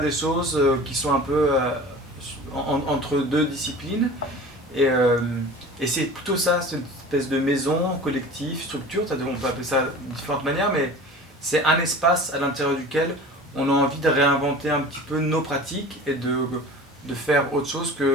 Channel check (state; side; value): normal; both; correlation 0.39